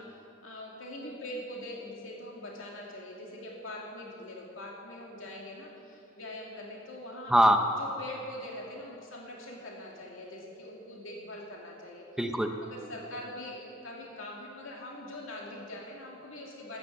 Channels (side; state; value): both; normal; correlation 0.67